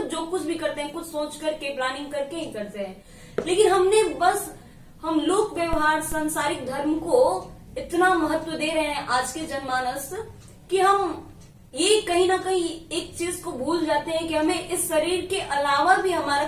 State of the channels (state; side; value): identical; both; correlation 1.00